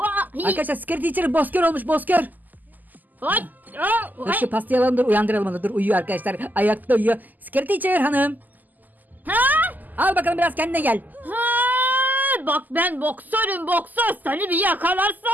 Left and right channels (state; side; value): late; left; 0.084 ms